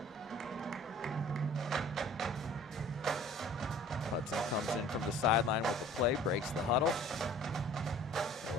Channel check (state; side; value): normal; both; correlation 0.49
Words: Hudson comes in from the sideline with the play, breaks the huddle.